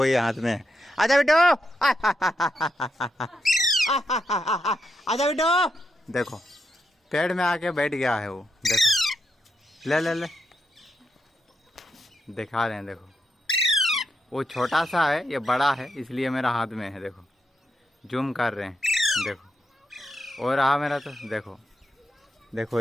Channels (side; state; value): both; normal; correlation 0.83